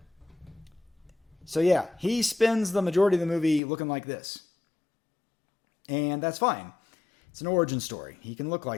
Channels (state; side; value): drops out; right; at 3.6 s